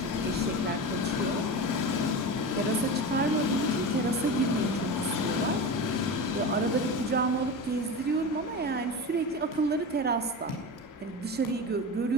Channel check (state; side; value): normal; both; correlation 0.26